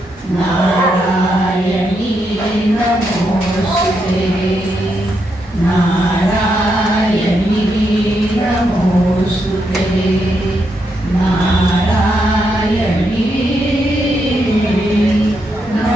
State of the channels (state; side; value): normal; both; correlation 0.80